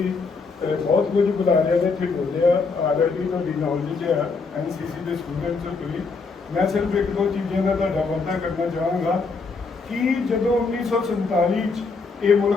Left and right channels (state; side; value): quieter; right; 4.4 dB